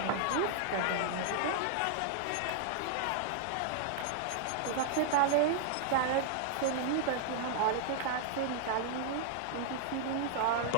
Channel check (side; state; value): both; different; correlation -0.01